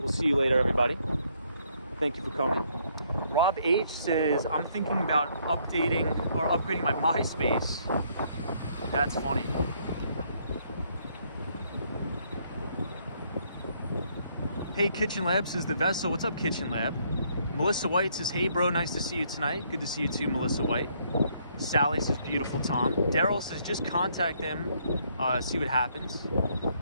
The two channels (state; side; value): inverted; both; correlation -0.69